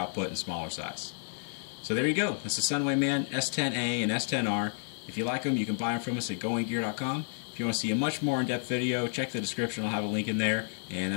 and smaller size. So there you go. That's the Sunwayman S10A and S10R. If you like them, you can buy them from us at goinggear.com. If you want to see a much more in-depth video, check the description. I'll have a link in there. And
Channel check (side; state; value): right; silent; 57 dB below the other